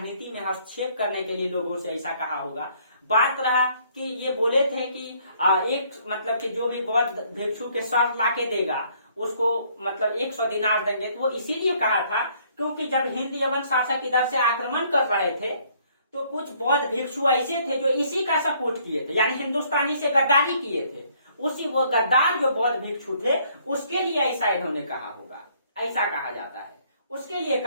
में हस्तक्षेप करने के लिए लोगों से ऐसा कहा होगा। बात रहा कि ये बोले थे कि एक मतलब कि जो भी बौद्ध भिक्षु के सर लाके देगा उसको मतलब 100 दिनार देंगे। तो वो इसीलिए कहा था क्योंकि जब हिंद यवन शासक इधर से आक्रमण कर रहे थे तो कुछ बौद्ध भिक्षु ऐसे थे जो इसी का सपोर्ट किए थे, यानी हिंदुस्तानी से गद्दारी किए थे। उसी वो गद्दार जो बौद्ध भिक्षु थे उसके लिए ऐसा इन्होंने कहा होगा, ऐसा कहा जाता है। उसके लिए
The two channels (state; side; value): inverted; both; correlation -0.64